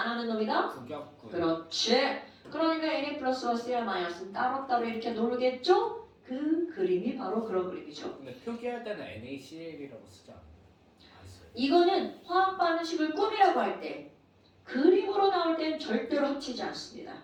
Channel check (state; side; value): identical; both; correlation 1.00